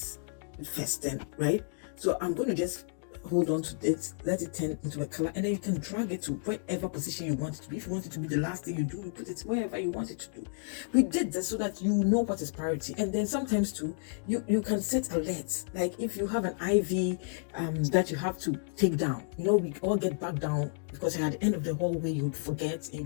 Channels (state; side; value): silent; right; digital silence